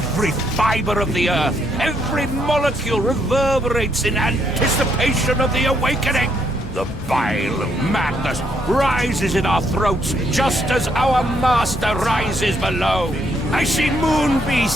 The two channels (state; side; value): normal; both; correlation 0.73